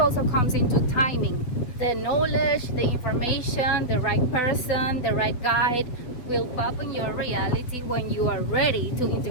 comes into timing. The knowledge, the information, the right person, the right guide, will pop in your reality when you are ready to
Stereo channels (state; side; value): late; right; 7.8 ms